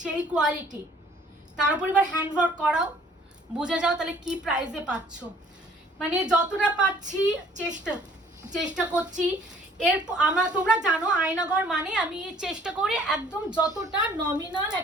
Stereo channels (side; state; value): both; normal; correlation 0.56